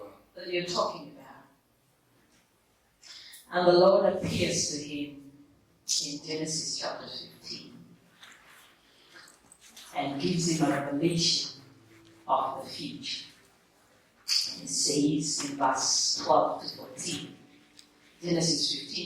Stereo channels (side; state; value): both; identical; correlation 1.00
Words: that you're talking about? And the Lord appears to him in Genesis chapter 15 and gives him a revelation of the future. It says in verse 12 to 14, Genesis